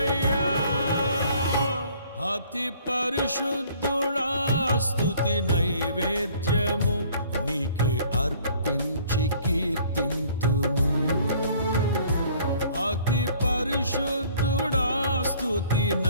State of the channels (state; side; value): inverted; both; correlation -0.56